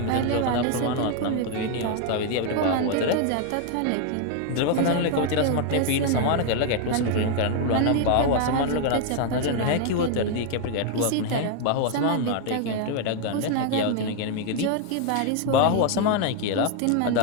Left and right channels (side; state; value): both; different; correlation 0.00